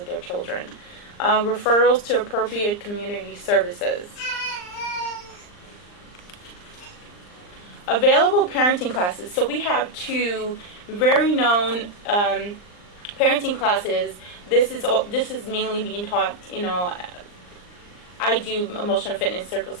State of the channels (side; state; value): right; late; 39 ms